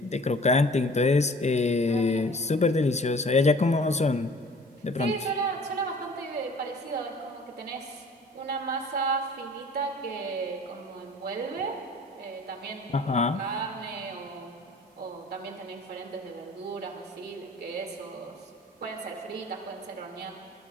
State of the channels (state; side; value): normal; both; correlation 0.49